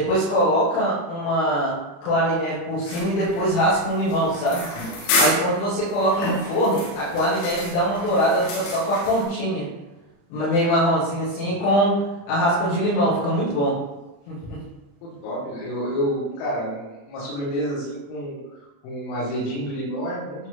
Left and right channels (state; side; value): late; right; 35 ms